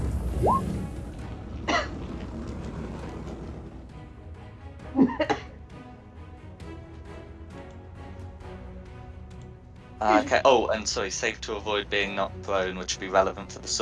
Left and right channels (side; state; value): both; identical; correlation 1.00